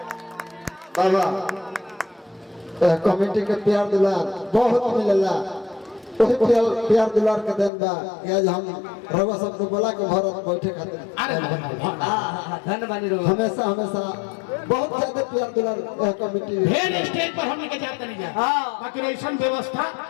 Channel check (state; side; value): drops out; right; at 7.7 s